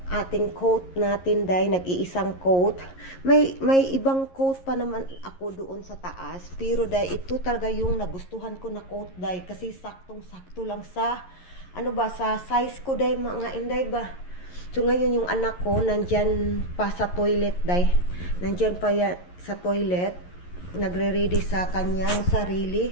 ating coat natin day, nag-iisang coat. May ibang coat pa naman ako doon sa taas, pero day ito talaga yung nagustuhan ko na coat day kasi saktong-sakto lang sa sa size ko day mga Inday ba. So ngayon yung anak ko nandyan pa sa toilet day. Nandyan pa sa toilet, nagre-ready sa kanyang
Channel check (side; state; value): right; late; 11 ms